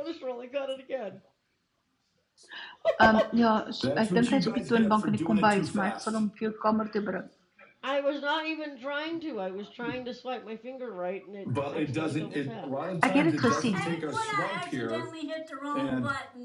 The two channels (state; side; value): identical; both; correlation 1.00